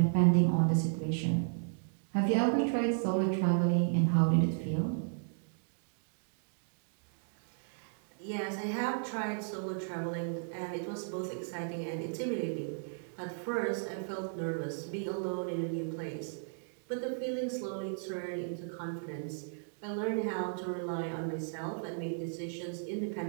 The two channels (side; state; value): left; silent; digital silence